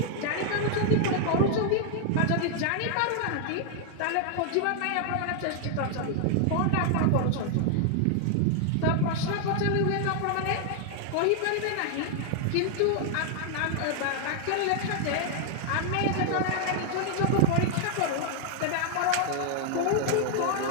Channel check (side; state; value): both; different; correlation 0.00